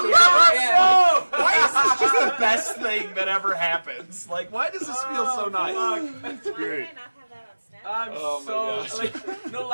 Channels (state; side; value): inverted; both; correlation -1.00